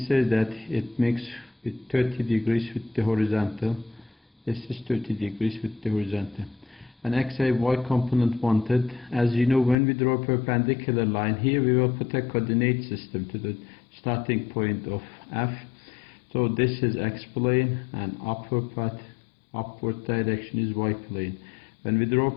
says that it makes it 30 degrees with the horizontal. This is 30 degrees with the horizontal. An x and y component wanted. As you know, when we draw a perpendicular line here, we will put a coordinate system to the starting point of F. So this is x plane and upward direction is y plane. When we draw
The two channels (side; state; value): right; drops out; at 9.8 s